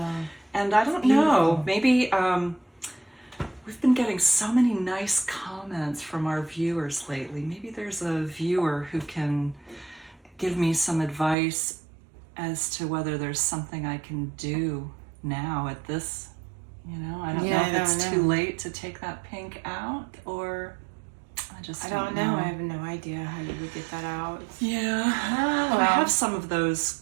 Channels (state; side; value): drops out; left; at 11.4 s